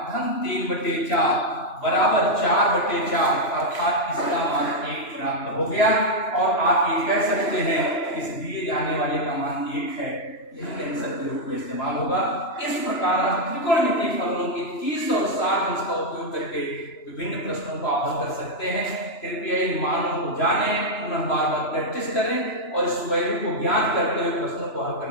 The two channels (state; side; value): late; right; 3.0 ms